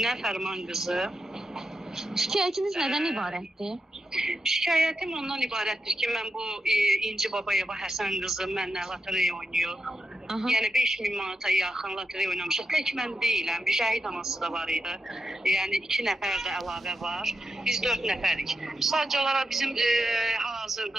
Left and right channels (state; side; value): normal; both; correlation 0.87